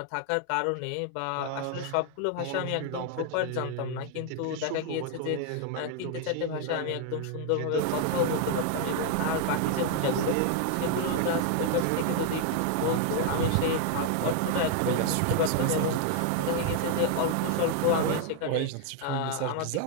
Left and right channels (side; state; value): both; different; correlation 0.00